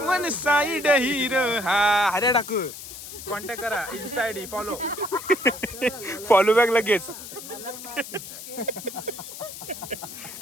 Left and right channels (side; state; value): left; noise; hiss, 12 dB below the sound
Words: वन साइड हिरो. हा हऱ्या टाकू. कॉन्टॅक्ट करा इन्स्टा आयडी फॉलो बॅक लगेच.